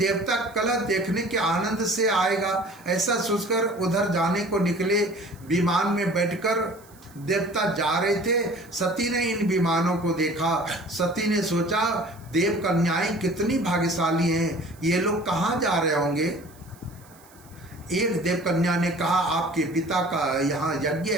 कलह देखने के आनंद से आएगा ऐसा सोचकर उधर जाने को निकले। विमान में बैठकर देवता जा रहे थे। सती ने इन विमानों को देखा। सती ने सोचा देव कन्याएं कितनी भाग्यशाली हैं, ये लोग कहाँ जा रहे होंगे। एक देव कन्या ने कहा आपके पिता का यहाँ यज्ञ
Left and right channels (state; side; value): noise; right; hiss, 26 dB below the sound